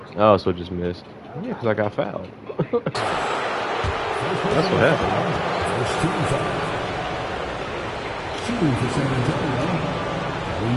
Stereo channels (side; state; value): both; identical; correlation 1.00